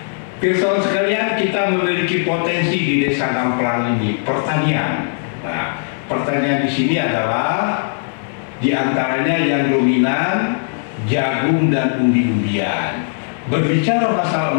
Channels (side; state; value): right; silent; digital silence